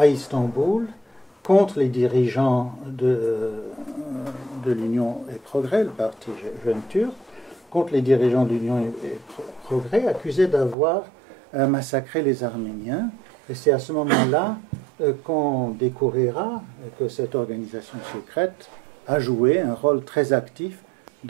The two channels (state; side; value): drops out; left; at 10.8 s